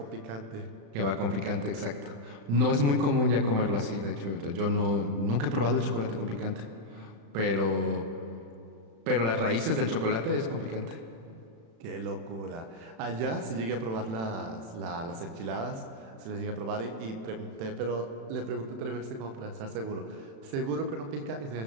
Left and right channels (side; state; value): left; late; 35 ms